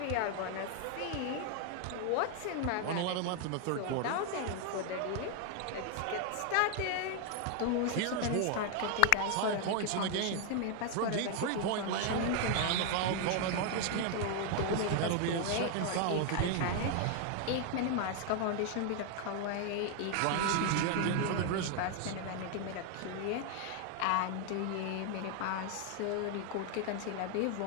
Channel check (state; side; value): different; both; correlation 0.00